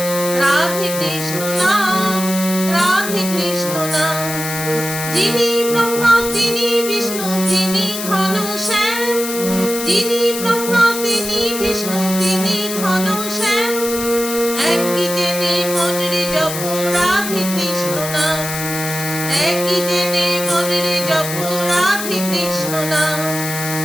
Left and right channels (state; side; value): noise; left; hiss, 6 dB below the sound